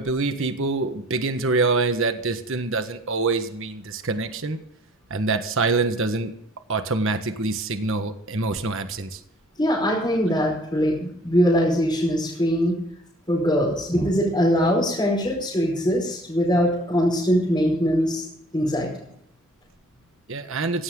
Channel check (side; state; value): both; normal; correlation 0.53